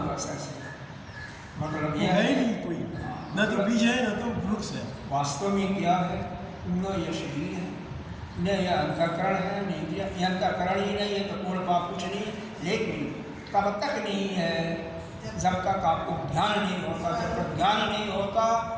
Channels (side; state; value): both; identical; correlation 1.00